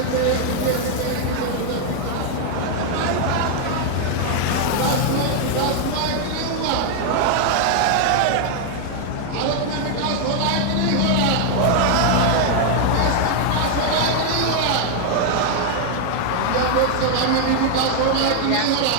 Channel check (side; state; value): both; different; correlation 0.00